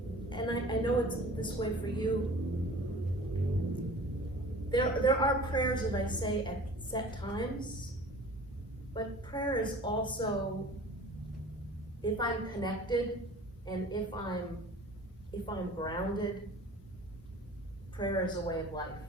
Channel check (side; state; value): both; normal; correlation 0.44